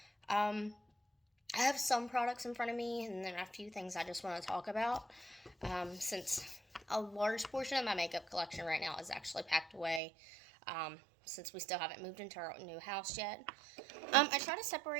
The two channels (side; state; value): left; drops out; at 10.0 s